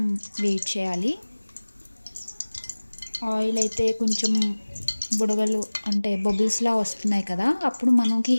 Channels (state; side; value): inverted; both; correlation -1.00